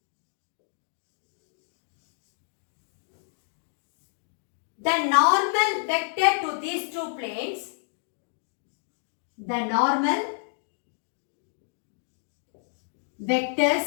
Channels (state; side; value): silent; right; digital silence